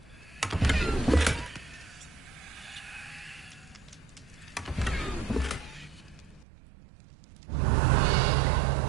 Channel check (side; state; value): left; drops out; at 6.5 s